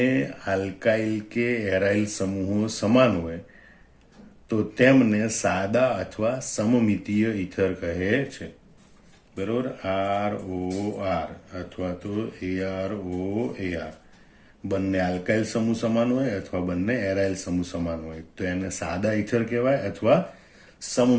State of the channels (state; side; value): identical; both; correlation 1.00